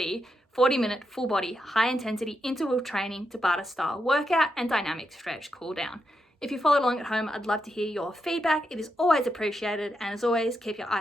40-minute full body, high intensity interval training Tabata style workout and dynamic stretch cool down. If you followed along at home, I'd love to hear your feedback. It is always appreciated, and as always, keep your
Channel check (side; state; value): both; normal; correlation 0.84